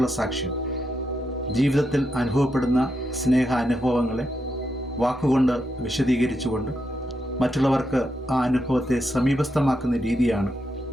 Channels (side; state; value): both; normal; correlation 0.83